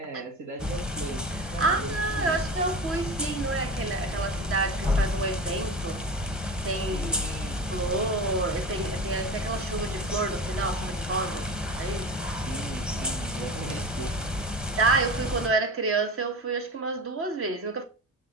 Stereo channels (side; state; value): both; normal; correlation 0.30